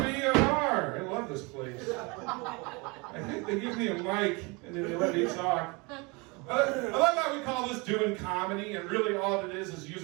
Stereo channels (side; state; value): left; quieter; 27.8 dB